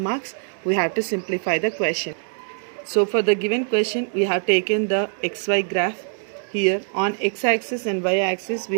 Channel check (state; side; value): silent; left; digital silence